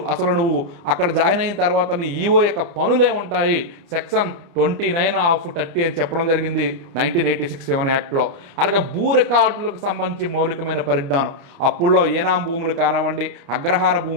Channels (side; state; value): left; late; 29 ms